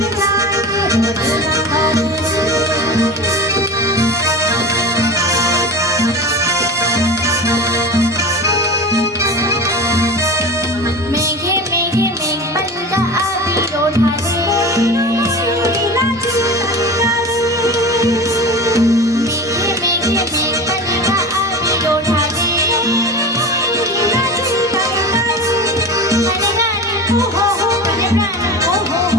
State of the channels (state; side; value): normal; both; correlation 0.31